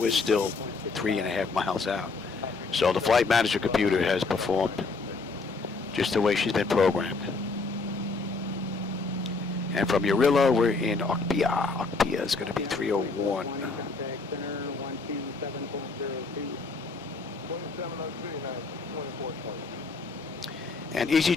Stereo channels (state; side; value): quieter; right; 4.0 dB